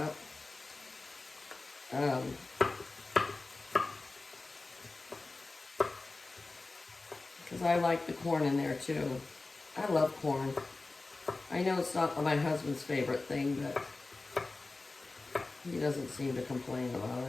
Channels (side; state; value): right; quieter; 3.4 dB